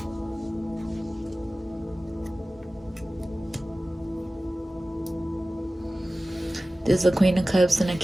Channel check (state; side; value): normal; both; correlation 0.96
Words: There's a Queen of Cups and a